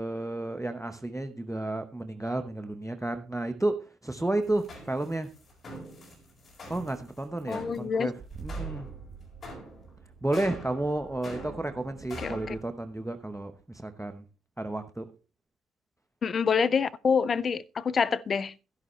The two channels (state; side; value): normal; both; correlation 0.87